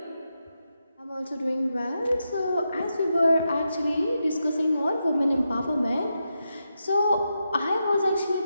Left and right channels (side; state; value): both; inverted; correlation -0.86